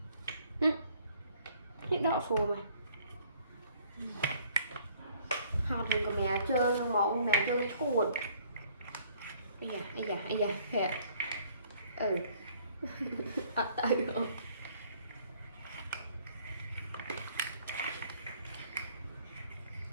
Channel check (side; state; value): both; inverted; correlation -0.60